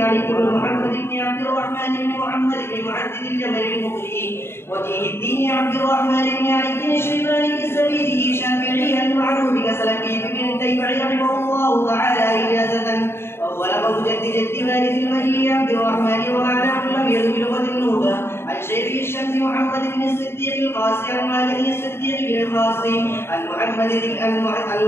علي بن محمد بن عبد الرحمن بن محمد بن معدد الجبل المقري وجيه الدين عبد الرحمن بن علي بن الشيباني الزبيدي الشافعي المعروف بسلفي بن تيمع رحمه الله تعالى إجازة، وهو لقب جد جد وارث المهدي عبد الرحمن ومعناه لم يذ بلغة النوبة عن شيخ الشمس محمد بن الصديق القاسي عن مالك الصديق بن القاسي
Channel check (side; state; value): right; late; 0.12 ms